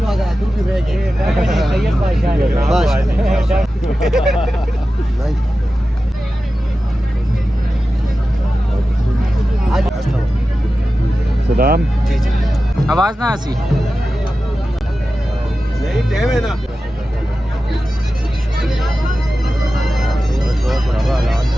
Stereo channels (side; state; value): both; normal; correlation 0.93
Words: तू भी रह गया बस। सलाम जी जी, आवाज ना आसी नहीं टाइम है ना।